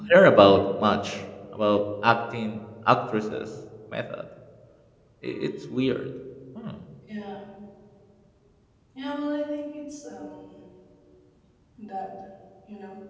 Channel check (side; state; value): both; identical; correlation 1.00